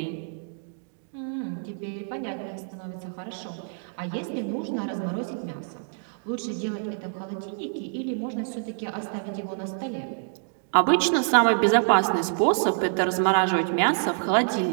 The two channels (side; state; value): left; silent; digital silence